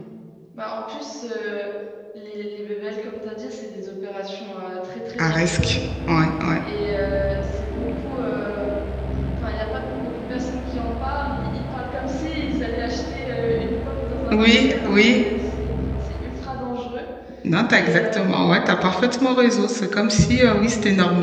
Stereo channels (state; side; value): identical; both; correlation 1.00